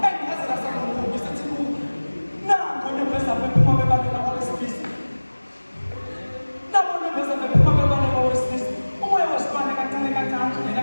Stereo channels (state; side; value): inverted; both; correlation -1.00